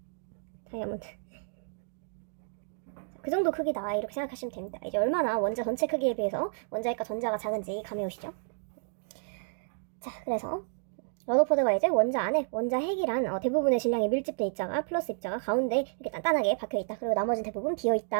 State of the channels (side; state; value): left; silent; digital silence